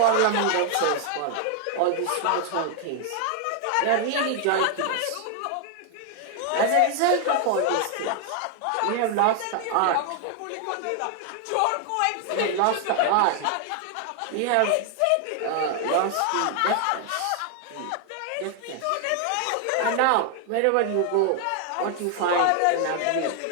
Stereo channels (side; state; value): both; different; correlation 0.00